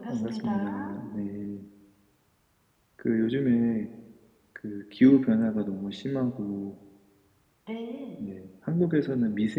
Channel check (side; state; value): both; identical; correlation 1.00